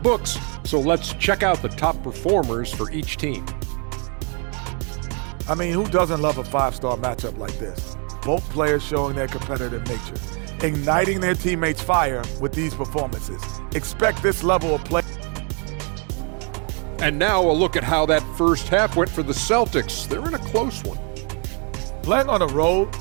so let's check out the top performers for each team. I mean, who doesn't love a 5-star matchup like this? Both players showing their competitive nature, igniting their teammates' fire with these performances. Expect this level of play. And now a look at how that first half went for the Celtics. They're in a close one. Playing on the road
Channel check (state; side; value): quieter; left; 36.7 dB